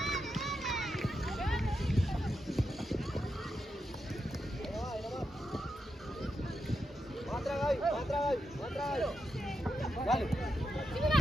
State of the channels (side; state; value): both; normal; correlation 0.86